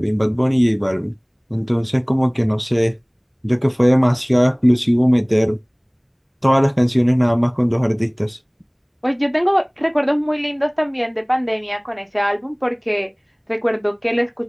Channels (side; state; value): both; identical; correlation 1.00